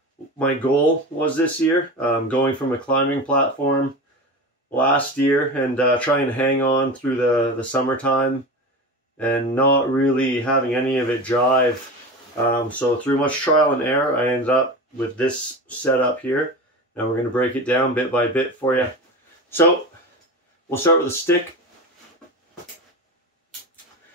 my goal was this year. Going from a climbing platform last year and trying to hang on through the summertime and not really having any of it jive. So through much trial and error, I ended up with this setup here, and we're going to break it down bit by bit for you. So we'll start with a stick.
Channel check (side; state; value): both; normal; correlation 0.27